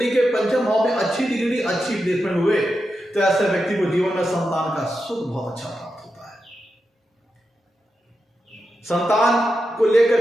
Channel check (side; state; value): both; normal; correlation 0.88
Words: के पंचम भाव में अच्छी डिग्री, अच्छी प्लेसमेंट हुए तो ऐसे व्यक्ति को जीवन में संतान का सुख बहुत अच्छा प्राप्त होता है। संतान को